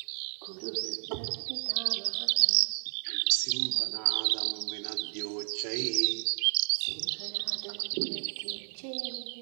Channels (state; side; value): silent; left; digital silence